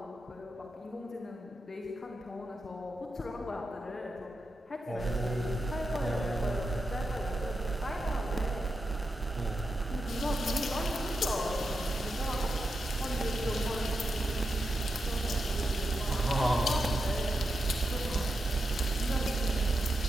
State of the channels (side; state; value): both; normal; correlation 0.88